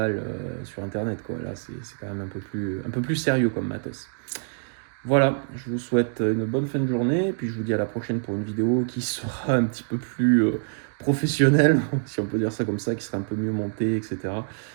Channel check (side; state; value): left; silent; digital silence